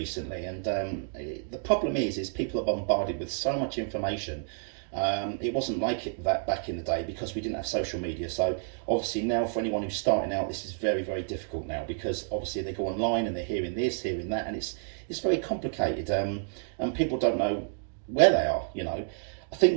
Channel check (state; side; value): silent; left; digital silence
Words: And the problem is people are bombarded with so much information. It wasn't like that back in the day because we didn't have social media. So obviously now for anyone who's starting out, this is very, very difficult now because obviously they go online and they're hearing this, hearing that, and it's very complicated. And people don't know where they are. I